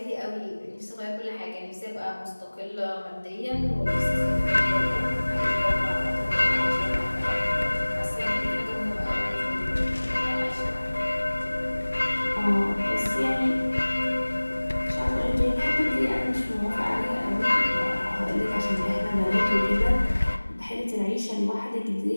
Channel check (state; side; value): inverted; both; correlation -1.00